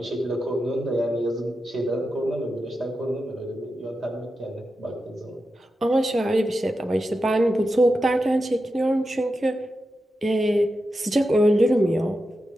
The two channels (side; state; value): both; normal; correlation 0.90